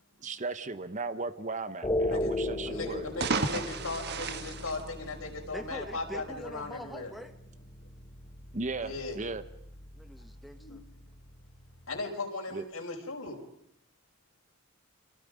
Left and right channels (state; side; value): normal; both; correlation 0.16